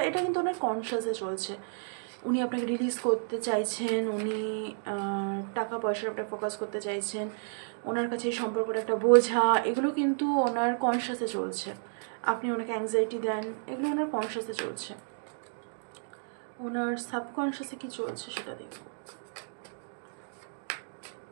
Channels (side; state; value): left; silent; digital silence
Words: এটা কিন্তু ওনার কনশিয়াসে চলছে। উনি আপনাকে রিলিজ করতে চাইছেন, উনি টাকা পয়সার উপরে ফোকাস করতে চাইছেন, ওনার কাছে এই সম্পর্কটা একটা বোঝা, এগুলো কিন্তু ওনার কনশিয়াসে চলছে। আপনি ওনাকে অ্যাংজাইটি দেন, এগুলো ওনার কনশিয়াসে চলছে। ওনার সাবকনশিয়াসে কী চলছে সেটা দেখব।